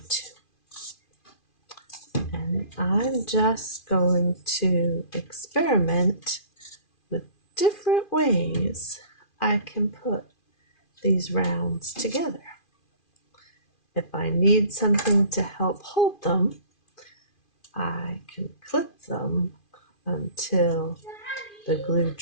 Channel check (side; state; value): right; late; 2.4 ms